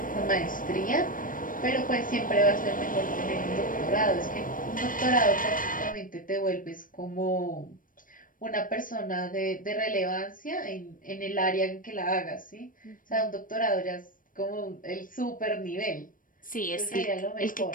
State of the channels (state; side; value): late; right; 0.40 ms